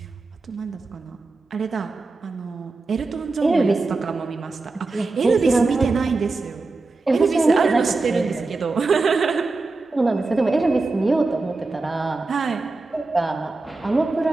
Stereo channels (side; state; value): left; quieter; 3.6 dB